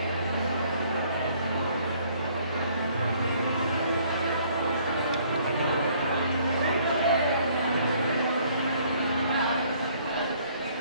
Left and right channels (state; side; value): inverted; both; correlation -0.61